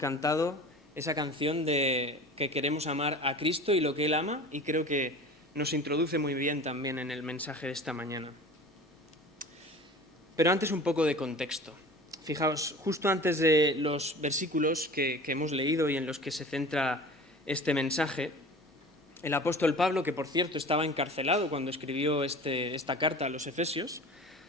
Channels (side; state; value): both; normal; correlation 0.39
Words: esa canción de que queremos amar a Cristo y lo que Él ama, y creo que nos introduce muy bien también en el mensaje de esta mañana. Pero antes un poco de contexto. fijaos, justo antes de los versículos que hemos leído y en los que se centra este mensaje, el apóstol Pablo, que por cierto estaba encarcelado cuando escribió esta carta a los Efesios,